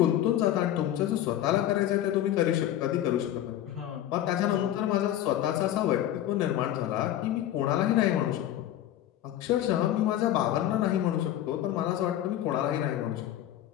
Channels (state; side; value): quieter; right; 12.3 dB